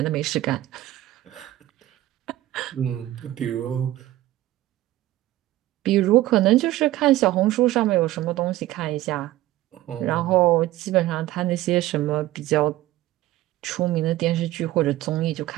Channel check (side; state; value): left; quieter; 15.6 dB